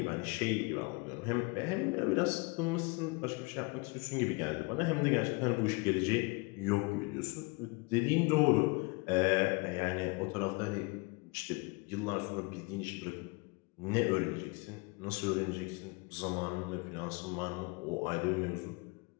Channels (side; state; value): right; quieter; 28.7 dB